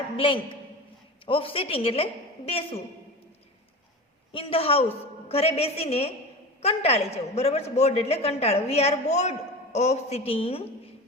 blank of sitting એટલે બેસવું, ઇન ધ હાઉસ ઘરે બેસીને કંટાળી જવું, બરાબર છે, બોર્ડ એટલે કંટાળો. We are board of sitting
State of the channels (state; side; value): normal; both; correlation 0.30